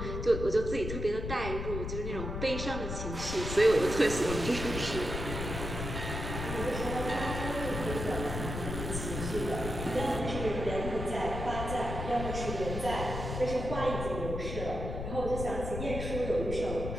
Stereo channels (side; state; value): left; noise; rumble, 4 dB below the sound